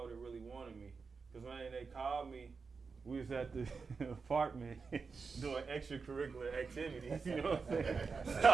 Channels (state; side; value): quieter; left; 4.9 dB